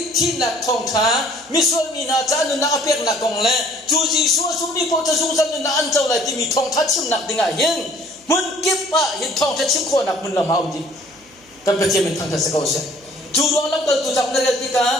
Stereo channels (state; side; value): noise; right; hum, 29 dB below the sound